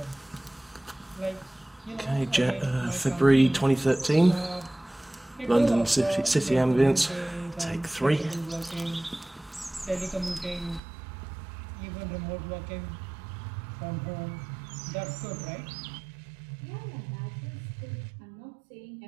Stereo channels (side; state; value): left; drops out; at 10.8 s